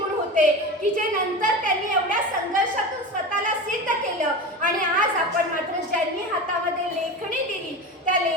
होते की जे नंतर त्यांनी एवढ्या संघर्षातून स्वतःला सिद्ध केलं. आणि आज आपण मात्र ज्यांनी हातामध्ये लेखणी दिली त्या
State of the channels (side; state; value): both; normal; correlation 0.27